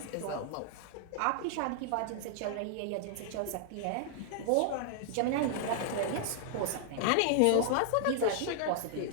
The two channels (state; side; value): different; both; correlation 0.00